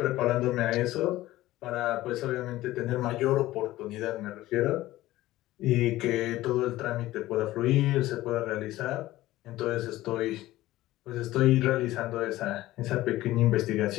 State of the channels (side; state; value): right; quieter; 16.4 dB